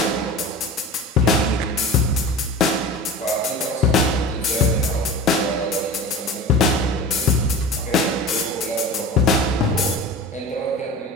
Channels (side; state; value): both; normal; correlation 0.34